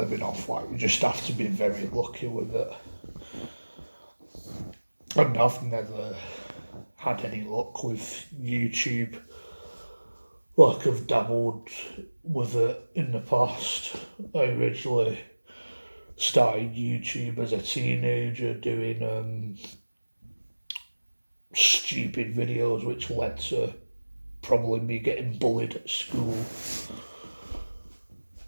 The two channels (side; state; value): both; inverted; correlation -1.00